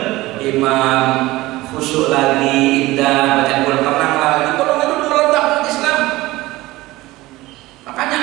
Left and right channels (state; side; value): quieter; left; 18.9 dB